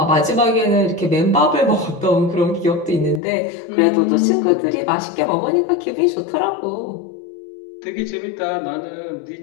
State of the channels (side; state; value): right; drops out; at 3.2 s